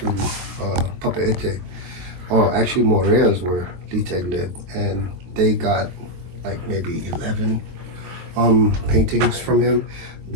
Papeete. Oh, actually Morea's where Liteg lived, and they got like maybe 11 paintings from him.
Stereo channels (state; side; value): late; left; 23 ms